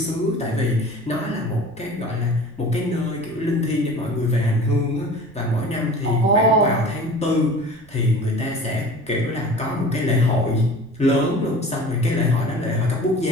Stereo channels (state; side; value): noise; right; rumble, 25 dB below the sound